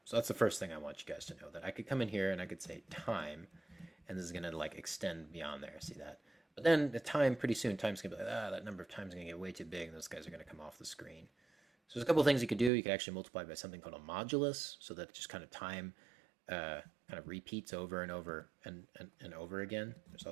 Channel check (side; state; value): left; drops out; at 12.7 s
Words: So that's the first thing I want you guys to know, that I could come in here and I could say time, and this is gonna like extend beyond there. See that? But then the time, pretty soon, time's gonna be like, that number of times is gonna get way too big, and those guys are gonna come off the screen. So there's a couple of things you could do. You could actually multiply by something called a modulus, so that just kind of time kind of repeats over and over and over again. There's